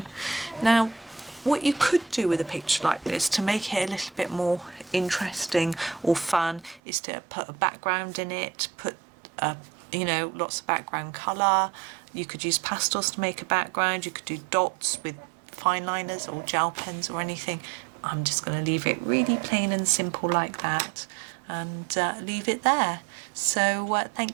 Now, what you could do with a picture like this to make it a little bit more interesting or fun is to put a background in it, put you know, lots of background colour. You could use pastels to make a background. You could do dots with fine liners or gel pens or anything. I'm just going to leave it really plain and simple like that, and leave it there. So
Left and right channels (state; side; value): drops out; left; at 6.8 s